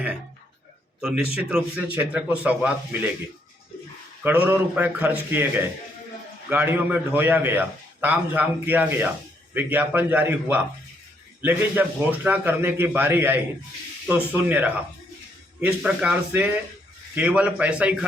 हैं तो निश्चित रूप से क्षेत्र को सौगात मिलेगी। करोड़ों रुपए खर्च किए गए, गाड़ियों में ढोया गया, तामझाम किया गया, विज्ञापन जारी हुआ, लेकिन जब घोषणा करने की बारी आई तो शून्य रहा। इस प्रकार से केवल पैसा ही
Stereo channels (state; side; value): normal; both; correlation 0.72